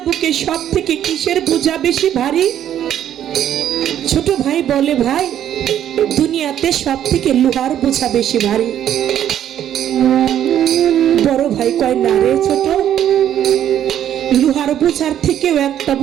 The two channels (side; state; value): left; quieter; 10.6 dB